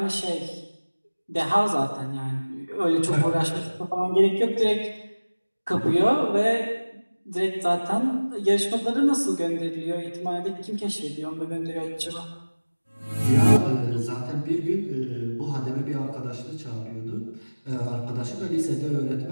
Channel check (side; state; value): both; inverted; correlation -1.00